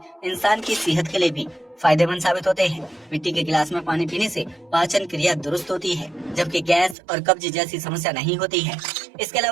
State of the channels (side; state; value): left; drops out; at 7.0 s